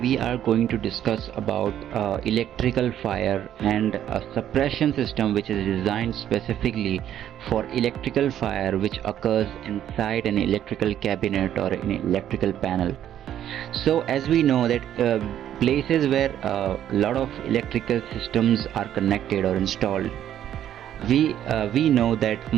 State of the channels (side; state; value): left; quieter; 10.9 dB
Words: are going to discuss about electrical fire and a suppression system which is designed specifically for electrical fire which occurs inside an electrical cabinet or an electrical panel. So as we know that places where a lot of electrical systems are connected or installed, we know that